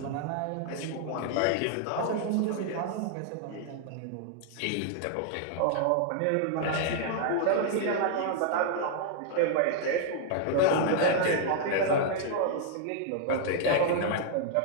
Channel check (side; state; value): both; different; correlation 0.00